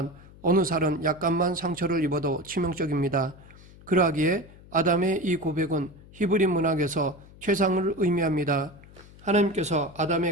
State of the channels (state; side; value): noise; left; hum, 22 dB below the sound